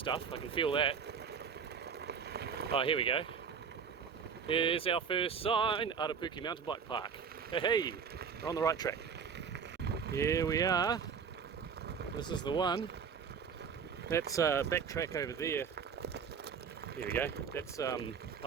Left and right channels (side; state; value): left; quieter; 6.5 dB